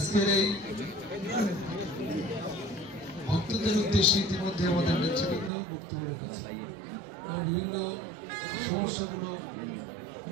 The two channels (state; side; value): drops out; left; at 5.5 s